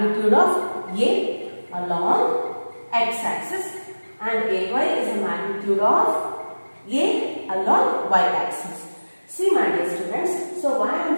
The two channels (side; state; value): both; inverted; correlation -1.00